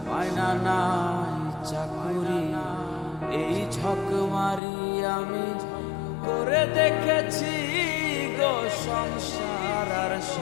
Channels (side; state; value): right; drops out; at 4.6 s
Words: মায়না নাই চাকুরি, এই ঝক মারি আমি করে দেখেছি গো সংসার আর